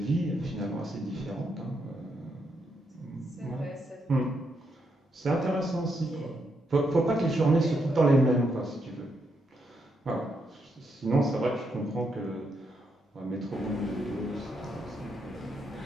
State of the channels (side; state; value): both; normal; correlation 0.79